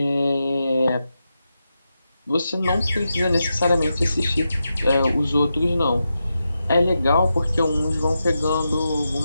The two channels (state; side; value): inverted; both; correlation -0.88